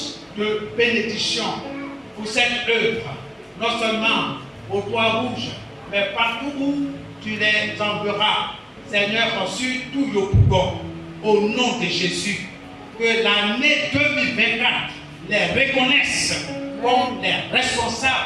de bénédiction pour cette œuvre, non seulement au Toit Rouge, mais partout où tu les enverras, Seigneur, sur tout le Yopougon, au nom de Jésus, que l'année 2024 les reconnaisse comme les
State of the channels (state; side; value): identical; both; correlation 1.00